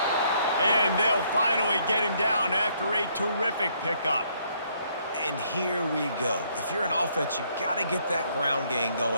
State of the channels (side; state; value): both; inverted; correlation -0.69